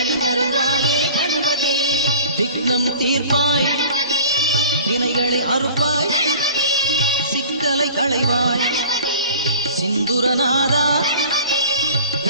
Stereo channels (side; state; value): both; inverted; correlation -0.43